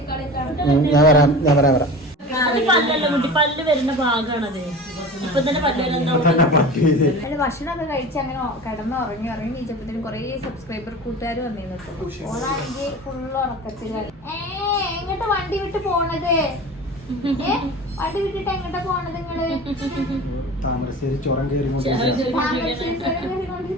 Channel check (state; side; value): normal; both; correlation 0.35